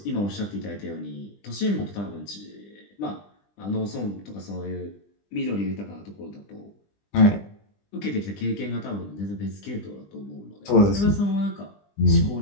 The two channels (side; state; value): right; late; 20 ms